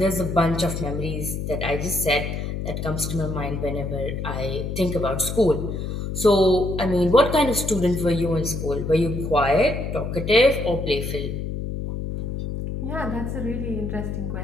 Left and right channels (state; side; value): noise; left; hum, 4 dB below the sound